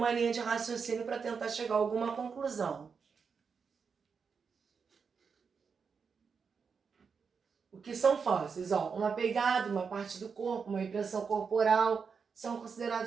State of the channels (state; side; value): quieter; left; 5.8 dB